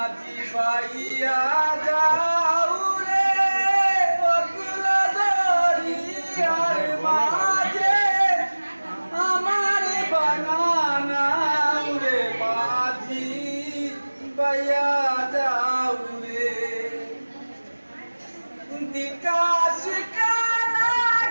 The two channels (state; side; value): inverted; both; correlation -1.00